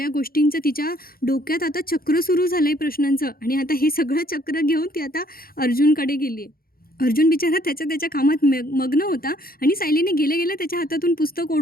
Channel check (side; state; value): right; late; 0.43 ms